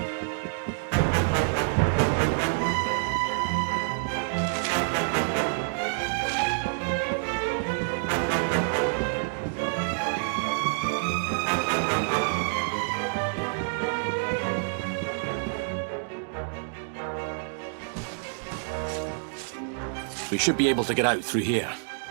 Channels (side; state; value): left; silent; digital silence